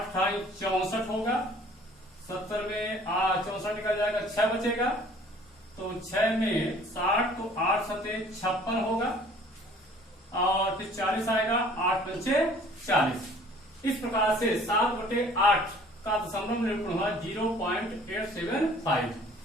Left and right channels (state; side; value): normal; both; correlation 0.52